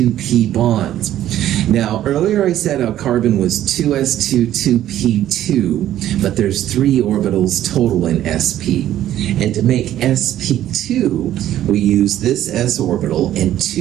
bonds. Now, earlier I said our carbon was 2s2, 2p2, but there's 3 orbitals total in sp. And to make sp2, we use this s orbital and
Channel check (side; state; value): left; quieter; 12.4 dB